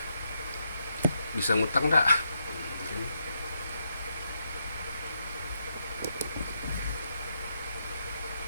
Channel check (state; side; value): inverted; both; correlation -0.81